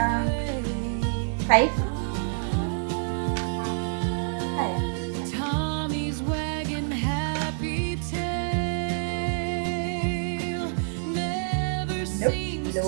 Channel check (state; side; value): silent; left; digital silence